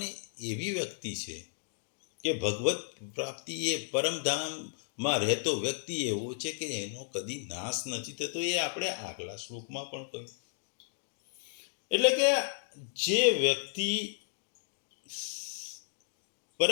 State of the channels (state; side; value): silent; right; digital silence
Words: એવી વ્યક્તિ છે કે ભગવત પ્રાપ્તિ એ પરમધામમાં રહેતો વ્યક્તિ એવો છે કે એનો કદી નાશ નથી થતો. એ આપણે આગલા શ્લોકમાં પણ કહ્યું. એટલે કે જે વ્યક્તિ